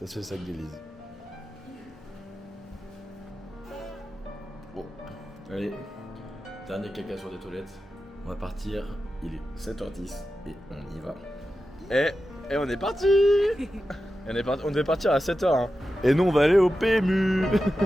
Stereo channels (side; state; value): both; normal; correlation 0.92